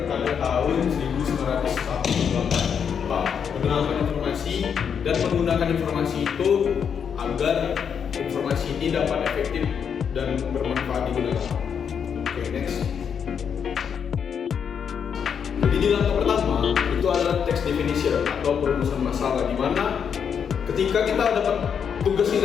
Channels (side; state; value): right; quieter; 7.3 dB